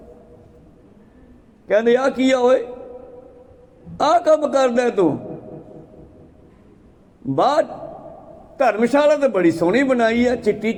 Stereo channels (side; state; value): both; identical; correlation 1.00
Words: कहते आ की होए, आ कम करदा तू? बाहर धर्मशाला तो बड़ी सोहनी बनाई है, चिट्टी